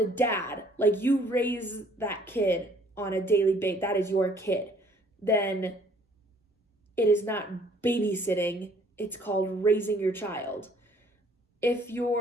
dad, like you raise that kid on a daily basis, that is your kid, then it is not babysitting. It's called raising your child. If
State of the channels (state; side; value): normal; both; correlation 0.59